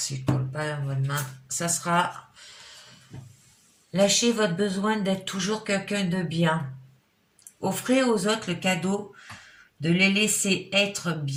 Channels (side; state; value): both; identical; correlation 1.00